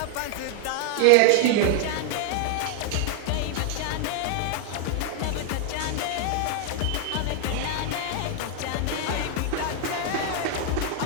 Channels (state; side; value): different; both; correlation 0.00